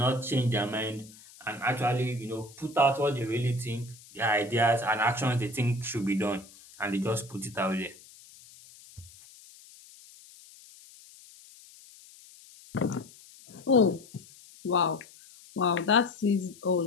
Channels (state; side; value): noise; left; hiss, 22 dB below the sound